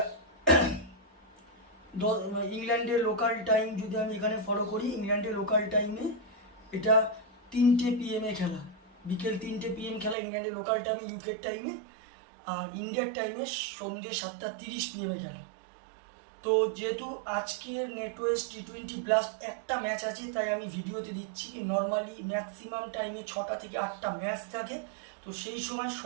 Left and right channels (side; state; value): left; drops out; at 10.2 s